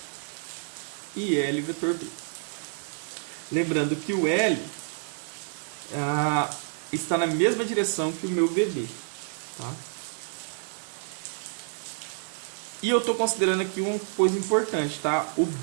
IL vetor B. Lembrando que o L está na mesma direção que o meu VD, tá? E eu estou considerando aqui uma coisa importante, tá? O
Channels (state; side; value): silent; left; 59 dB below the other